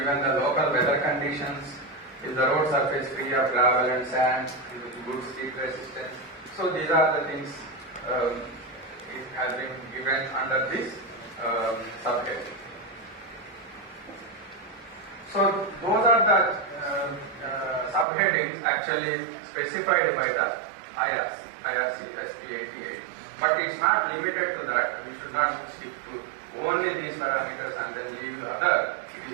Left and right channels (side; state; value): left; drops out; at 18.1 s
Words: the local weather conditions? Is the road surface free of gravel and sand with good steep resistance? So these are the things it has been given under this subject. So those are the subheadings actually specified by the IRC SP 88. But it's not limited to that. We should not stick to only these parameters and then leave the other. It